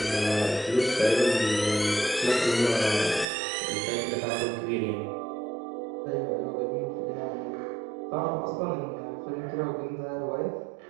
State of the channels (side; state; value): left; drops out; at 3.2 s